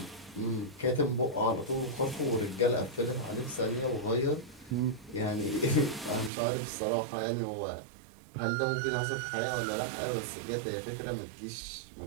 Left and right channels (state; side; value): drops out; left; at 6.3 s